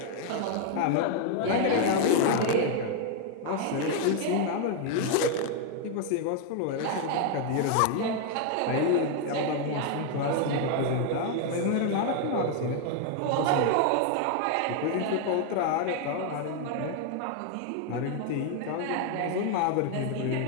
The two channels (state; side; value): different; both; correlation 0.00